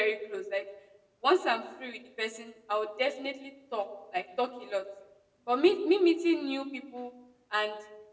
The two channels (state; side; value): identical; both; correlation 1.00